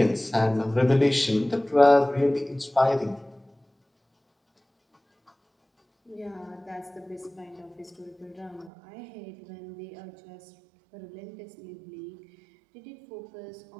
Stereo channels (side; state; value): left; drops out; at 8.7 s